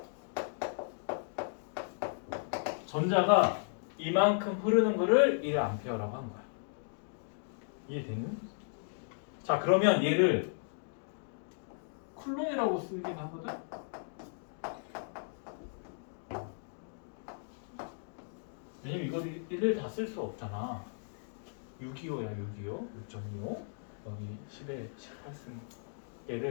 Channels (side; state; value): right; silent; digital silence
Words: 전자가 이만큼 흐르는 거를 1A라고 한 거야. 이해되니? 자, 그러면 얘를 쿨론이라고 쓰긴 하거든? 왜냐면 이걸 1을 다 쓸 수 없잖아. 625야, 625. 6.25. 여기 10에 18승.